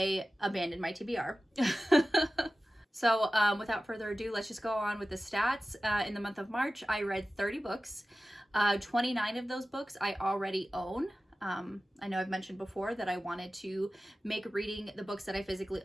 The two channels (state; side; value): normal; both; correlation 0.95